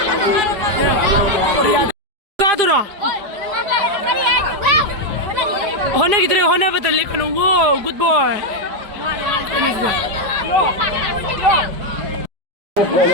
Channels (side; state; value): left; late; 4.9 ms